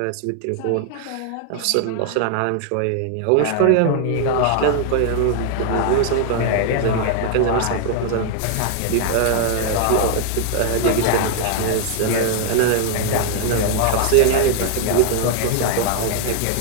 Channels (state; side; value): different; both; correlation 0.00